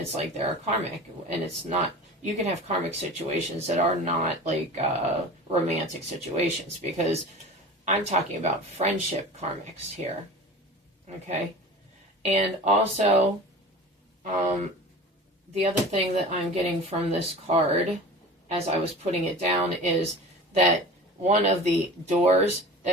like they're karmic, and it's not, you can have karmic situations that are not, like, romantic situations, because I'm talking about friendship karmics here, okay? And also, the other thing that I'm getting from this card, as I was putting it down, is that one of the doors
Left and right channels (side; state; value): both; normal; correlation 0.37